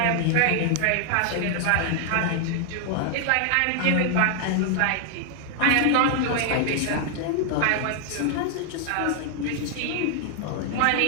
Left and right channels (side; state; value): both; different; correlation 0.00